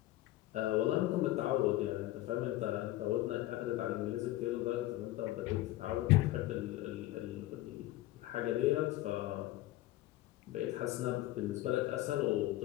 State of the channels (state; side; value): quieter; right; 16.2 dB